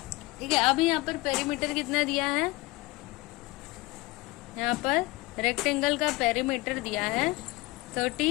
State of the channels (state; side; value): quieter; right; 21.3 dB